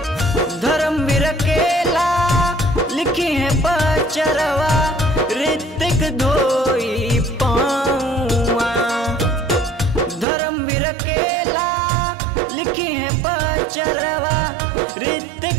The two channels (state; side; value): drops out; left; at 10.2 s